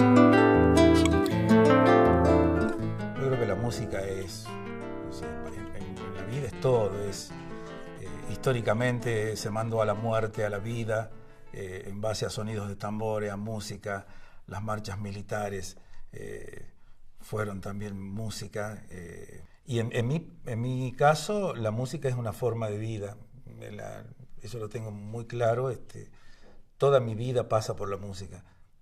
creo que la música es, no sé, en la vida es todo, históricamente se mandó a la muerte, a la vida, en base a sonidos de tambores, a música, las marchas militares fueron también música. Y en mi caso, la música es una forma de vida. Eso lo tengo muy claro. Toda mi vida pasa por la música.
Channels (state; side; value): identical; both; correlation 1.00